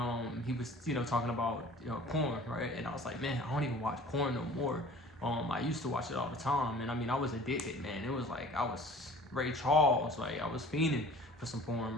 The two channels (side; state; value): both; normal; correlation 0.47